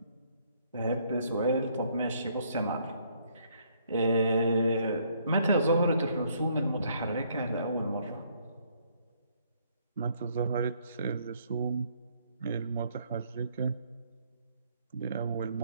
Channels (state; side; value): inverted; both; correlation -0.67